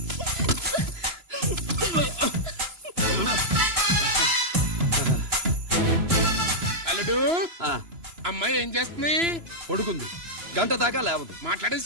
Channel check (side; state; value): left; late; 3.0 ms